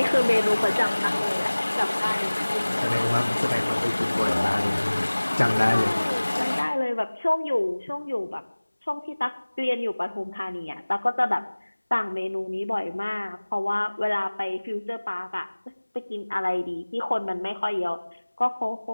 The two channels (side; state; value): both; inverted; correlation -1.00